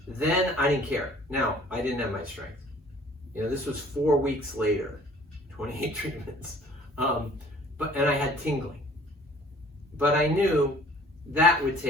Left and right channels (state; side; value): normal; both; correlation 0.53